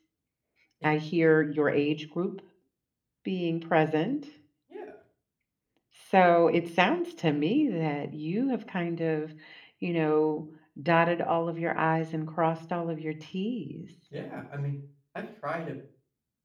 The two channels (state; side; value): identical; both; correlation 1.00